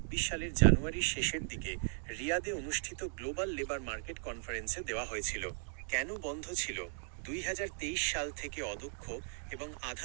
সালের জানুয়ারির শেষের দিকে রিয়াদে অনুষ্ঠিত গ্লোবাল লেবার মার্কেট কনফারেন্সে দেওয়া হয়েছিল। কেন বন্ধ ছিল? 2023 সাল থেকে অদক্ষ এবং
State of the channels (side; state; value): left; silent; 53 dB below the other